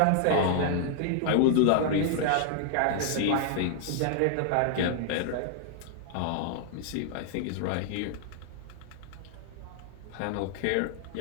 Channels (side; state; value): both; different; correlation 0.00